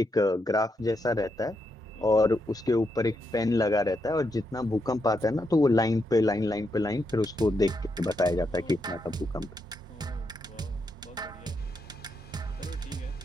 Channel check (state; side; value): normal; both; correlation 0.81